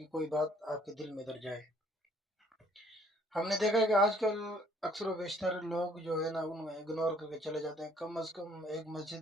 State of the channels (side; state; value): both; normal; correlation 0.61